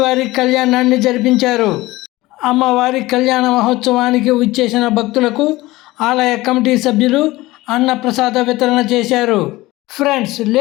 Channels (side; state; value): right; quieter; 19.0 dB